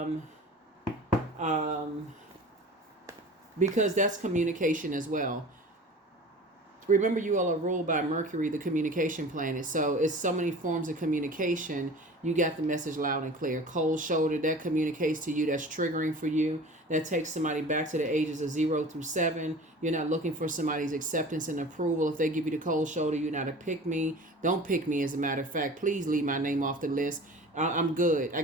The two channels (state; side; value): normal; both; correlation 0.40